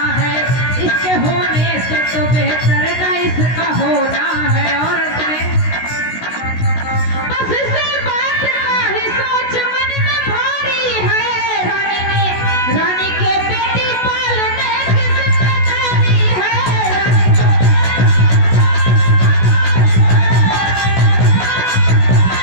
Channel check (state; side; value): late; right; 16 ms